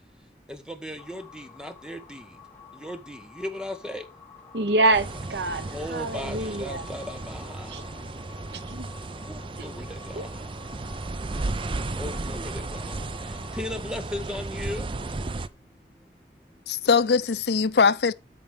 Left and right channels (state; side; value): normal; both; correlation -0.04